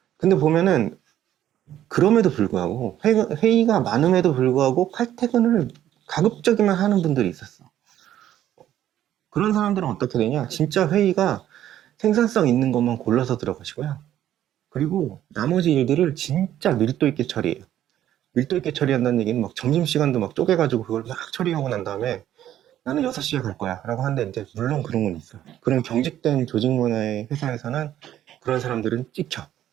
근데 보면은 그럼에도 불구하고 회의가 많음에도 불구하고 칼퇴근을 가급적이면 하는 분들이 있었어. 그런 사람들은 어떻게 되냐? 진짜 회의가 생산성 있는 것만 골라서 들어가시고요. 그리고 나머지 일들을 진짜 밀도 있게 처리해요. 밀도 있게 처리한다는 얘기는 막 점심시간도 막 쪼개가지고 그걸 막 처리하고 난 다음에 나는 6시에 갈 거야 라고 하는데 이제 물론 그런 건 있어요. 그런 경직된 조직 문화의 회사에서는 그런 사람들은 찍혀.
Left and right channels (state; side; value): quieter; left; 11.8 dB